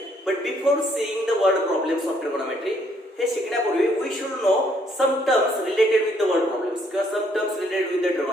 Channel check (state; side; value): normal; both; correlation 0.68